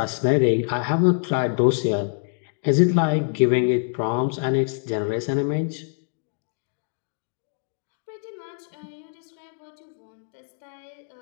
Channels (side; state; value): right; silent; digital silence